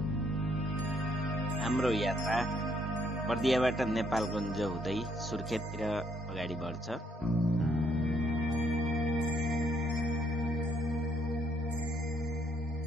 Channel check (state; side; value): normal; both; correlation 0.70